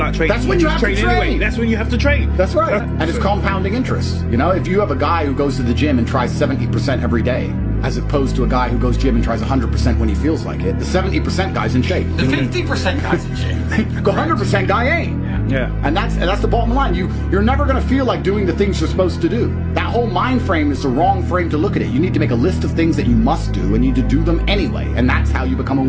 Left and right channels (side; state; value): both; identical; correlation 1.00